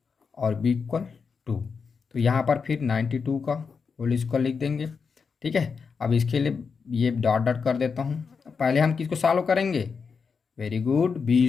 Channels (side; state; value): right; quieter; 5.5 dB